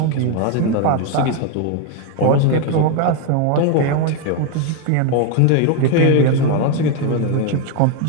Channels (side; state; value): both; different; correlation 0.01